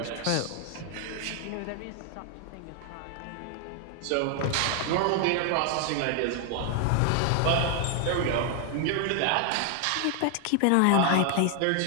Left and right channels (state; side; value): different; both; correlation 0.00